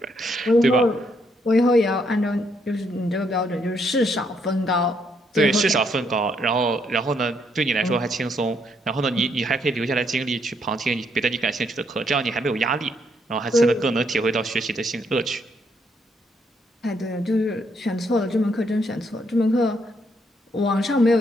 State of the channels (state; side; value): normal; both; correlation 0.74